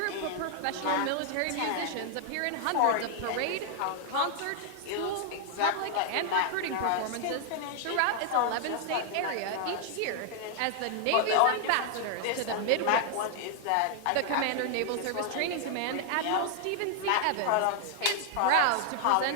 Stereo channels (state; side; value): different; both; correlation 0.00